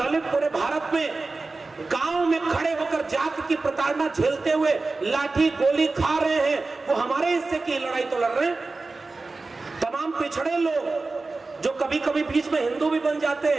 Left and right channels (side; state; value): left; quieter; 3.6 dB